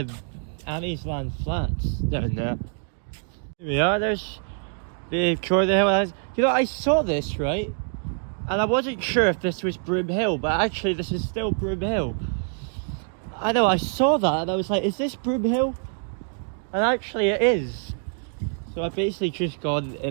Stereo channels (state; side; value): silent; left; 55 dB below the other